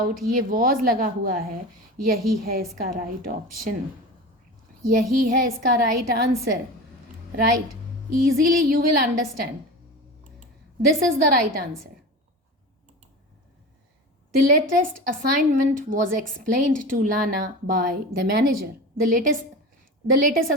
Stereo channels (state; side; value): normal; both; correlation 0.30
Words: ये वॉज लगा हुआ है, यही है इसका राइट ऑप्शन, यही है इसका right answer, right? Easily you will understand this is the right answer. The latest assignment was explained to Lana by the manager. The latest